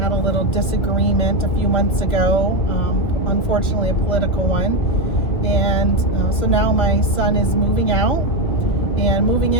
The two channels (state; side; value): late; right; 2.4 ms